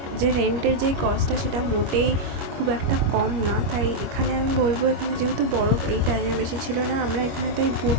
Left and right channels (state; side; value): late; left; 25 ms